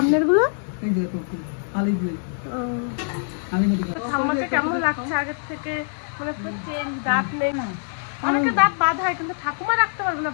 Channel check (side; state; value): right; silent; 56 dB below the other